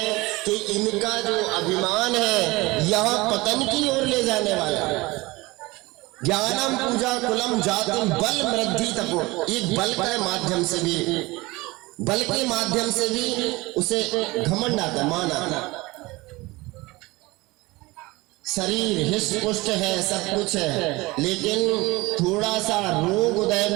कि इनका जो अभिमान है यह पतन की ओर ले जाने वाला है। ज्ञानम पूजा कुलम जातिम बल वृद्धि तपो, एक बल के माध्यम से भी, बल के माध्यम से भी उसे घमंड आता, मान आता। शरीर हिष्ट पुष्ट है, सब कुछ है, लेकिन थोड़ा सा रोग उदय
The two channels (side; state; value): left; quieter; 21.9 dB